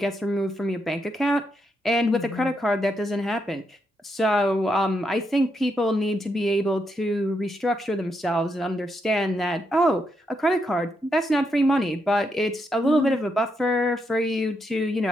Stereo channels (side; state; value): both; normal; correlation 0.80